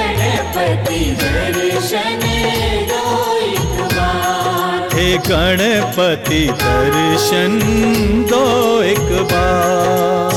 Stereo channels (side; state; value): both; identical; correlation 1.00